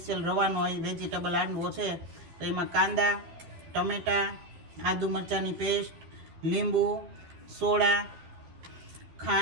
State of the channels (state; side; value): late; left; 12 ms